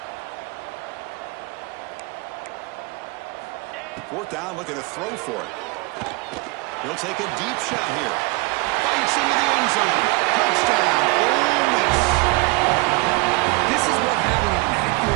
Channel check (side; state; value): left; quieter; 25.6 dB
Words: Fourth down, looking to throw for it. He'll take a deep shot here. Bites into the end zone. Touchdown. Ole Miss. This is what having an